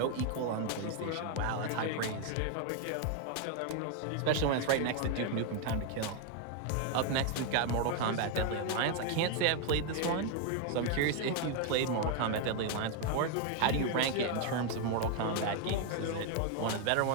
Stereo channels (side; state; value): both; different; correlation 0.00